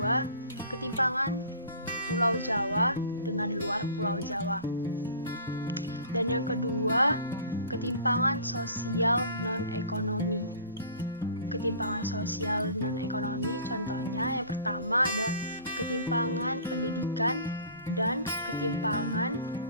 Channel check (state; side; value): inverted; both; correlation -0.45